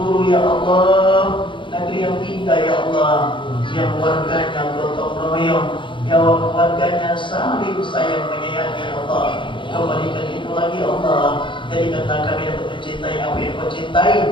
ya Allah, negeri yang indah ya Allah, yang warganya gotong royong, yang warganya saling sayang menyayangi ya Allah. Kembalikan itu lagi ya Allah, jadikanlah kami dapat mencintai apa yang Kau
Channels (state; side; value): late; right; 0.24 ms